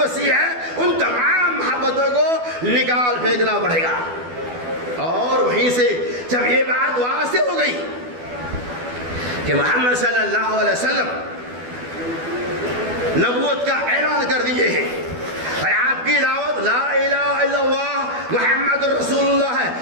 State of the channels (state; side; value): late; left; 12 ms